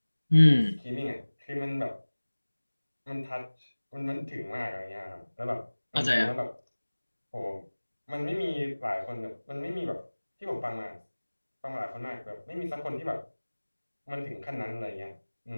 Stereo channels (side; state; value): both; inverted; correlation -1.00